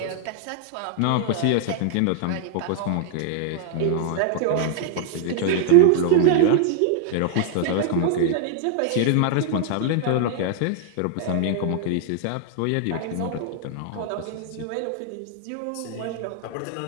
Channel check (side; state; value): both; different; correlation -0.01